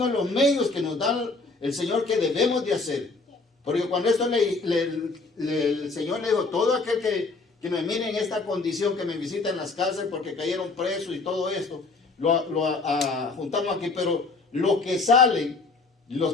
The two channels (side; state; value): right; quieter; 3.8 dB